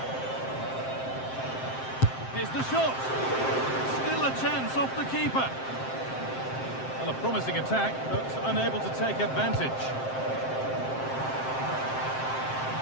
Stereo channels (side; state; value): right; late; 7.6 ms